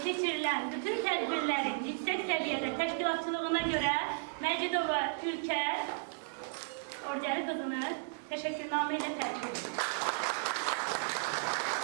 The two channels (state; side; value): silent; left; digital silence